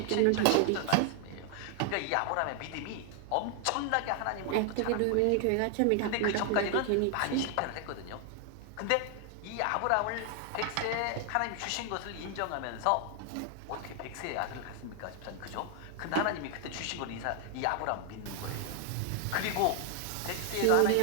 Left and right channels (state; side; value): different; both; correlation 0.00